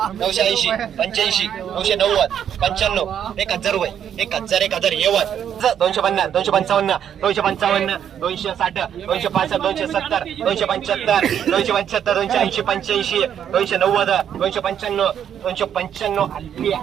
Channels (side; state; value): left; quieter; 9.1 dB